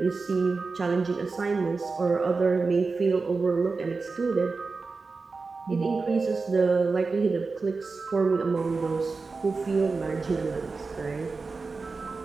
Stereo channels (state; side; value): quieter; left; 4.2 dB